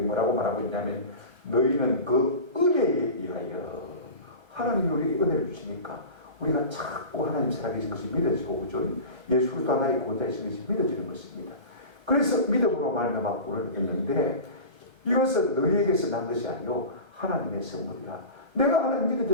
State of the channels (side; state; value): left; late; 1.3 ms